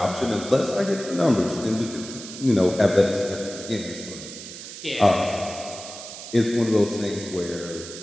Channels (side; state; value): right; noise; hiss, 12 dB below the sound